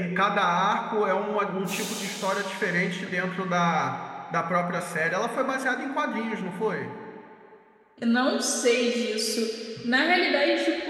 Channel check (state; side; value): identical; both; correlation 1.00